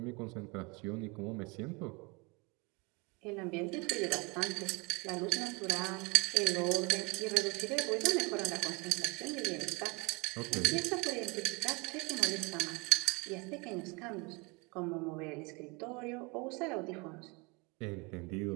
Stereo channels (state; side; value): quieter; left; 28.2 dB